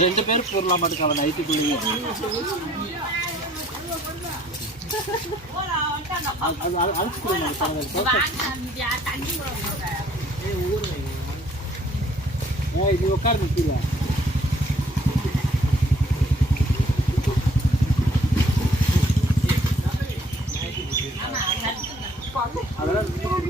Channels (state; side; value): normal; both; correlation 0.60